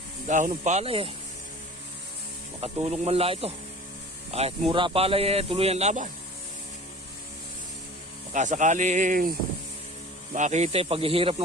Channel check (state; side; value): normal; both; correlation 0.41